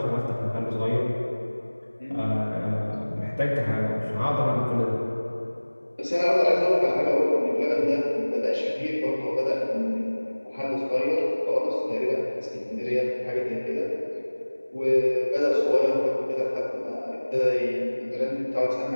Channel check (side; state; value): both; inverted; correlation -1.00